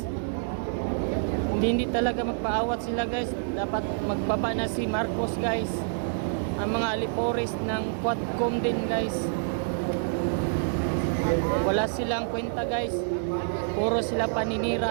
Hindi talaga magpaawat sila guys. Dapat magbaba na si Marcos guys. Ang mga alipores ng Quadcom din guys. Wala silang kwenta guys. Puro sila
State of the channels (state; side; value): silent; left; digital silence